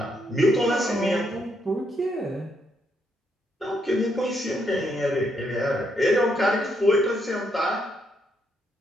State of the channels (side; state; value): both; normal; correlation 0.76